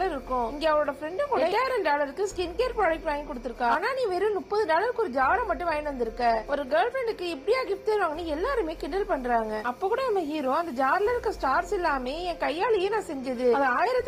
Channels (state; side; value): identical; both; correlation 1.00